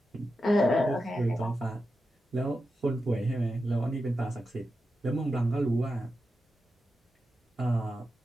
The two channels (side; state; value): both; normal; correlation 0.89